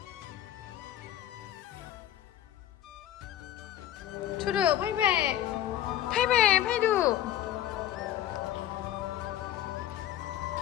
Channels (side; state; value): right; quieter; 12.2 dB